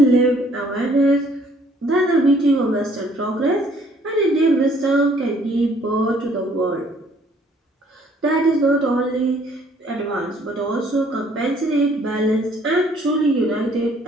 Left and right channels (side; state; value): both; normal; correlation 0.61